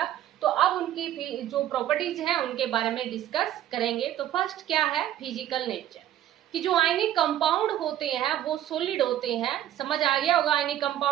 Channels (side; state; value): left; quieter; 12.2 dB